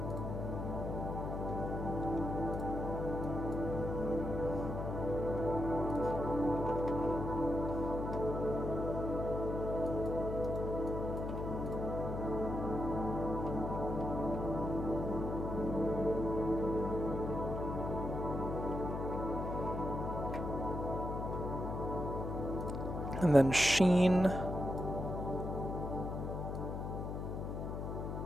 And then sheen.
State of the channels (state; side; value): noise; left; hum, 4 dB below the sound